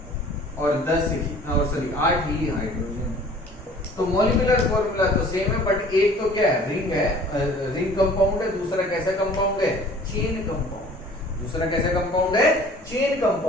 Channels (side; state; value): both; normal; correlation 0.49